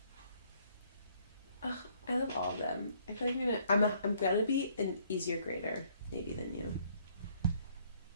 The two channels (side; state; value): both; inverted; correlation -0.64